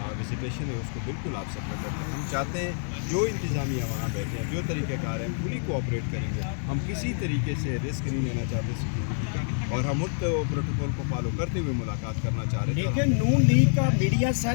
विजिटेशन है उसको बिल्कुल आप सफल करते हैं। हम चाहते हैं जो इंतज़ामिया वहाँ बैठे हैं, जो तरीक़ाकार हैं, फुली कोऑपरेट करेंगे। हम किसी तरीके से रिस्क नहीं लेना चाहते सिक्योरिटी का और हम उस प्रोटोकॉल को फॉलो करते हुए मुलाकात करना चाह रहे हैं। लेकिन नून लीग का मीडिया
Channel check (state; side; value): silent; right; 60 dB below the other